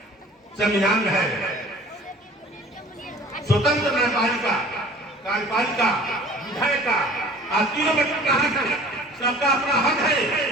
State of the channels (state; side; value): normal; both; correlation 0.47